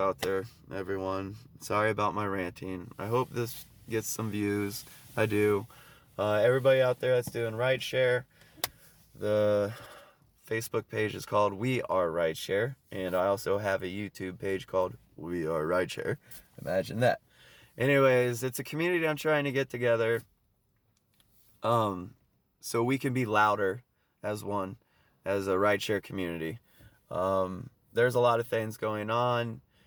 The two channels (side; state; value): both; identical; correlation 1.00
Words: there, everyone. Sorry about my ranting. I hope this gets some views. I do. Everybody out there that's doing rideshare, the Facebook page is called We Are Rideshare, and I also have a YouTube page called We Are Rideshare. Imagine that. Anyways, it's a community I'm trying to get together, so we can be louder as one, as a rideshare community. There's a lot of things going on